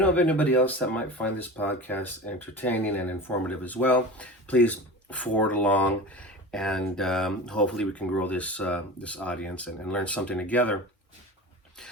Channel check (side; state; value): both; normal; correlation 0.32